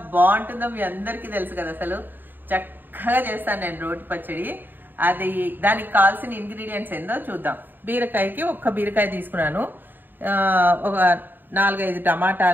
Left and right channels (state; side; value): late; left; 0.092 ms